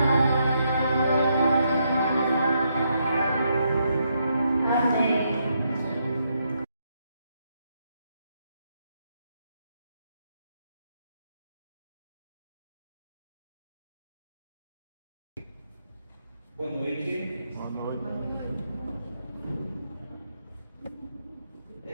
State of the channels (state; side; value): inverted; both; correlation -0.78